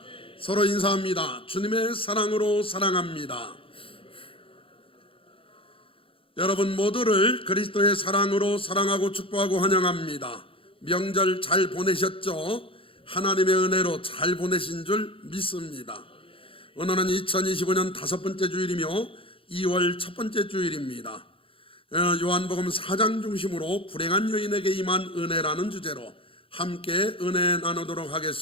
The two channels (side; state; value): right; late; 0.26 ms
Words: 서로 인사합니다. 주님의 사랑으로 사랑합니다. 여러분 모두를 그리스도의 사랑으로 사랑하고 축복하고 환영합니다. 명절 잘 보내셨죠? 하나님의 은혜로 잘 보내신 줄 믿습니다. 오늘은 2025년 5번째 주일이며 2월 첫 번째 주일입니다. 요한복음 4장 중심으로 불행한 여인에게 임한 은혜라는 주제로 함께 은혜 나누도록